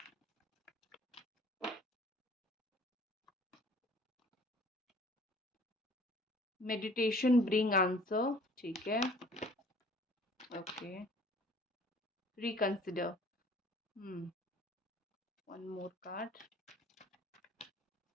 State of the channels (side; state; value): both; normal; correlation 0.52